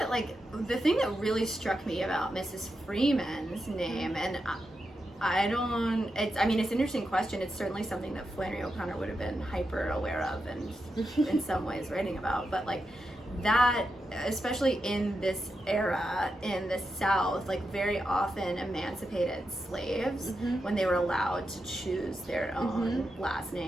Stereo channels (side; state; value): both; normal; correlation 0.87